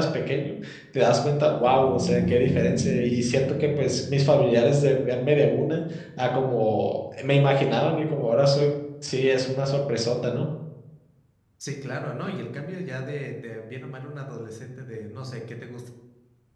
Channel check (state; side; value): identical; both; correlation 1.00